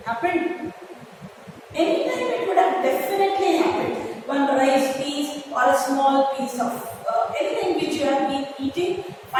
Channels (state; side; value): identical; both; correlation 1.00